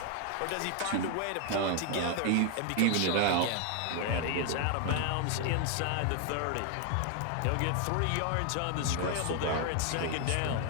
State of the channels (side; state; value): both; different; correlation 0.00